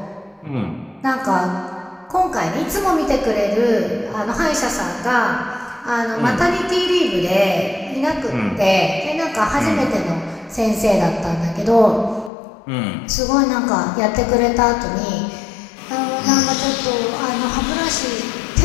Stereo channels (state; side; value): drops out; right; at 12.3 s